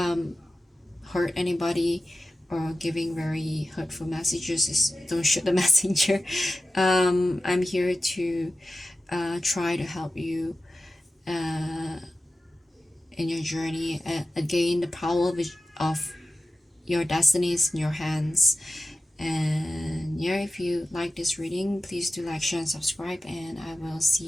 anybody or giving very hurtful messages. Don't shoot the messenger. I'm here to try to help you in your journey. Again, the power of your destiny is in your hands. And yeah, if you like this reading, please do like, share, and subscribe, and I will see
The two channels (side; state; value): both; normal; correlation 0.94